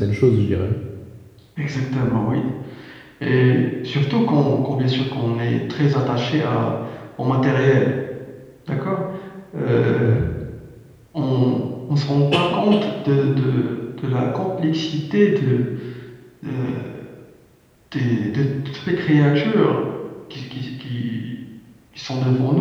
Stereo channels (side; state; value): both; identical; correlation 1.00